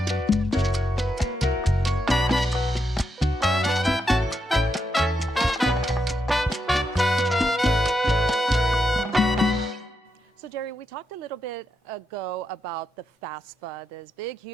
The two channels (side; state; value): both; normal; correlation 0.83